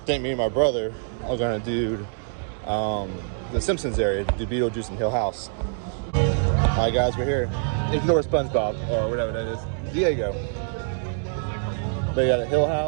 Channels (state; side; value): silent; left; digital silence